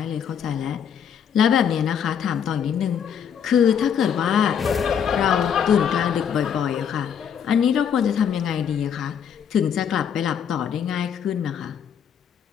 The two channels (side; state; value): right; quieter; 8.0 dB